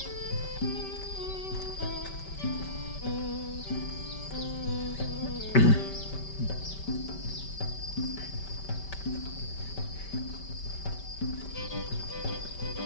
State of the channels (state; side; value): late; right; 5.2 ms